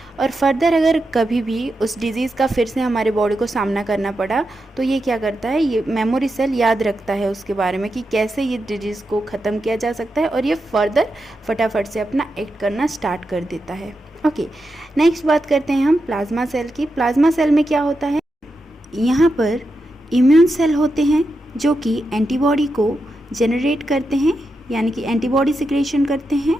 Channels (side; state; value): both; normal; correlation 0.87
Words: और फर्दर अगर कभी भी उस डिज़ीज़ का फिर से हमारे बॉडी को सामना करना पड़ा तो ये क्या करता है, ये मेमोरी सेल याद रखता है उसके बारे में कि कैसे ये डिजीज़ को ख़त्म किया जा सकता है, और ये फर्दर फटाफट से अपना एक्ट करना स्टार्ट कर देता है. ओके, नेक्स्ट बात करते हैं हम प्लाज्मा सेल की. प्लाज्मा सेल में क्या होता है, यहाँ पर इम्यून सेल होते हैं जो कि एंटीबॉडी को जनरेट करते हैं, यानी कि एंटीबॉडी सिक्रेशन करते हैं,